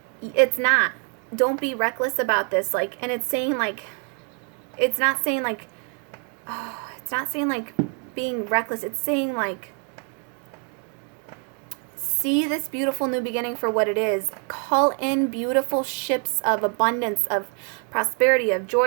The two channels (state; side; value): quieter; left; 38.9 dB